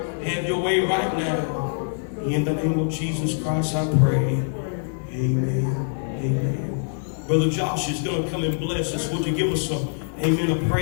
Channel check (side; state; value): right; silent; digital silence